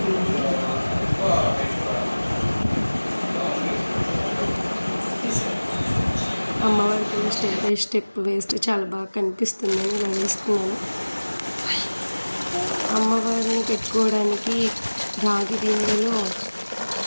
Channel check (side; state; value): both; inverted; correlation -1.00